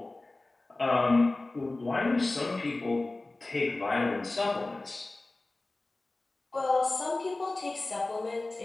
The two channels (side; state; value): right; quieter; 3.0 dB